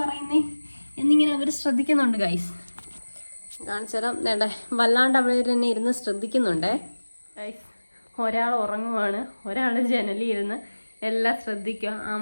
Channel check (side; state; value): both; inverted; correlation -1.00